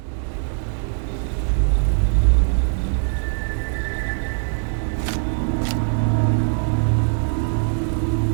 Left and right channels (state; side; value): silent; left; digital silence